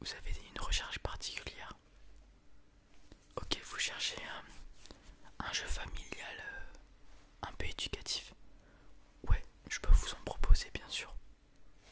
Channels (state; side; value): identical; both; correlation 1.00